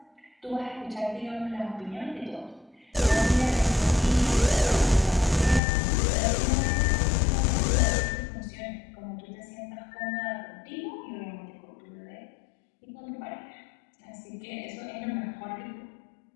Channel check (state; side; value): drops out; right; at 5.6 s